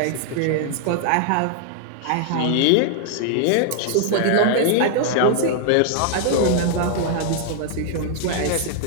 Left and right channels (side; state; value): both; different; correlation -0.01